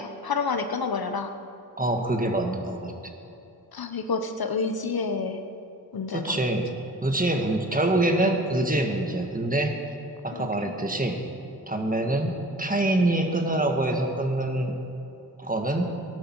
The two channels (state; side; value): normal; both; correlation 0.41